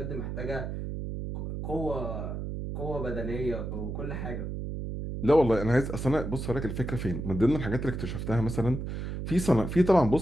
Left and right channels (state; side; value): noise; right; hum, 5 dB below the sound